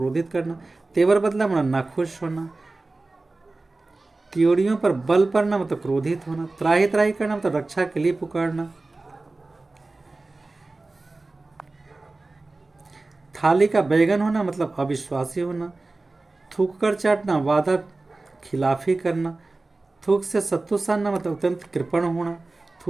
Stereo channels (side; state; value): left; quieter; 3.3 dB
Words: करना। तेवर बदला मतलब नाखुश होना। त्योरियों पर बल पड़ना मतलब क्रोधित होना। त्राही त्राही करना मतलब रक्षा के लिए पुकारना। थाली का बैगन होना मतलब अविश्वासी होना। थूक कर चाटना वादा खिलाफी करना। थूक से सत्तू सानना मतलब अत्यंत कृपण होना।